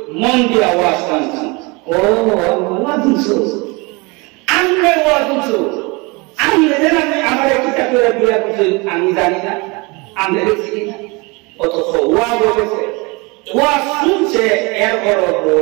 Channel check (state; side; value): quieter; left; 27.3 dB